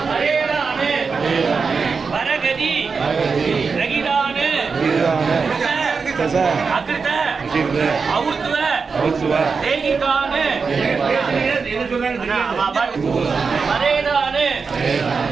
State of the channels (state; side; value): quieter; left; 5.1 dB